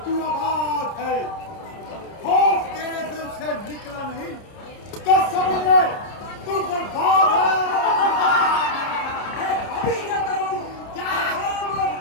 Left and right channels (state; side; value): late; right; 30 ms